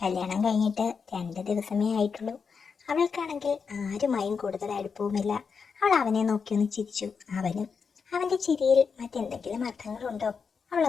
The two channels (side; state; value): right; quieter; 5.7 dB